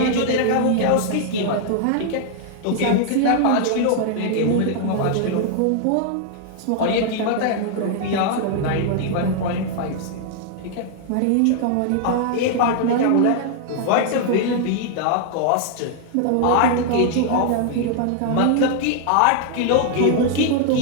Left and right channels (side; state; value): both; different; correlation 0.00